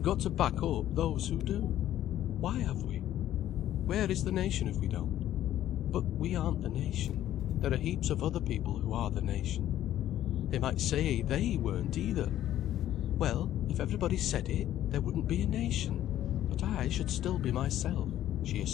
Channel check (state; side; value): quieter; right; 12.4 dB